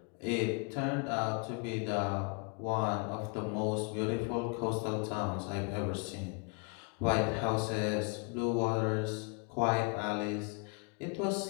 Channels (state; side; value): quieter; right; 34.1 dB